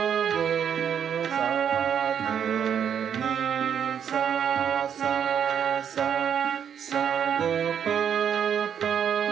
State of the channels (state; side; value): quieter; left; 8.3 dB